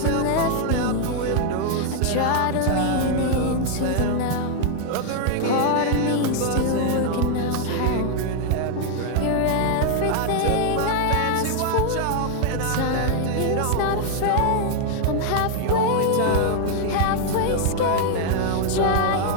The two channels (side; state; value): both; different; correlation 0.00